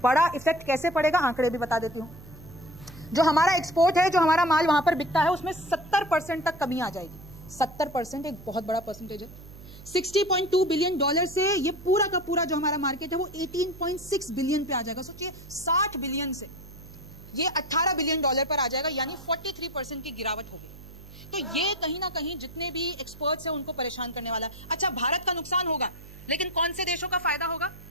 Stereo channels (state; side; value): noise; right; hum, 17 dB below the sound